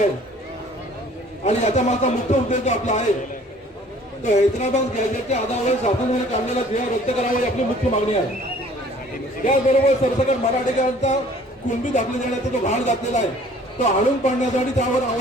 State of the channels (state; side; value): normal; both; correlation 0.54